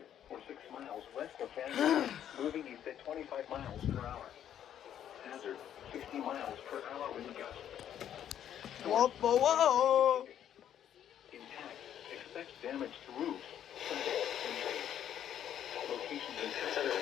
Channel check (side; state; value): right; quieter; 10.2 dB